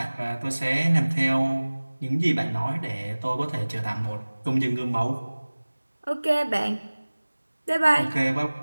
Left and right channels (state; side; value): inverted; both; correlation -1.00